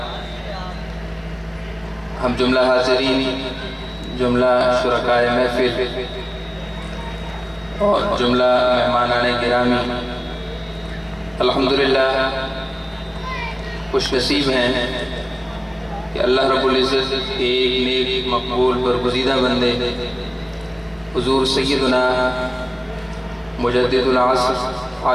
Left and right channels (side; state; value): both; identical; correlation 1.00